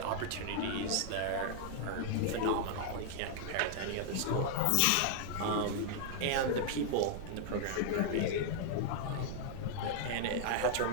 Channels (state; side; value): different; both; correlation -0.01